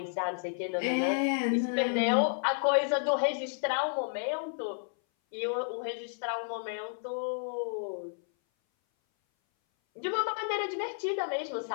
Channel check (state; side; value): silent; right; 57 dB below the other